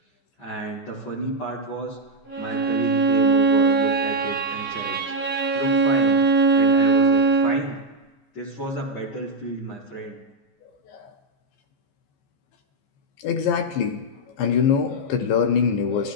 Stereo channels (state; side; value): late; right; 15 ms